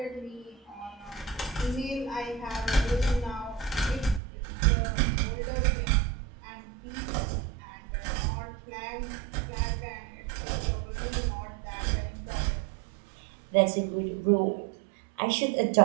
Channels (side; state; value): left; drops out; at 4.2 s